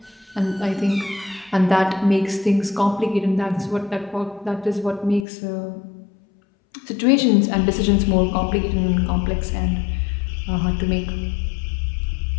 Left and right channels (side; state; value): right; drops out; at 5.2 s